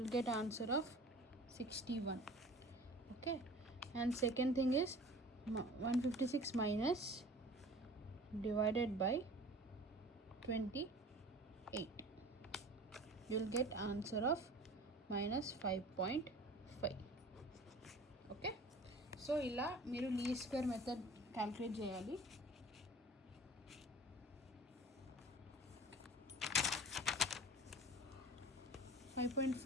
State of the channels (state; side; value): normal; both; correlation 0.43